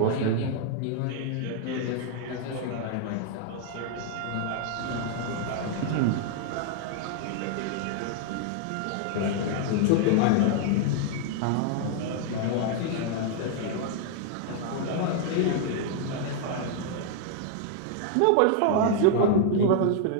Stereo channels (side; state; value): both; different; correlation 0.00